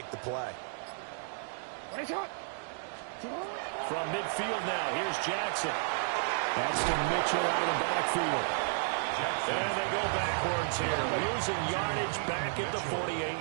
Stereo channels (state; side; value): silent; left; digital silence